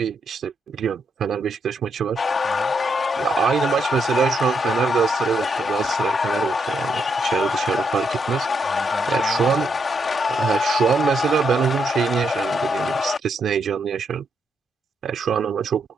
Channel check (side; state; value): both; normal; correlation 0.78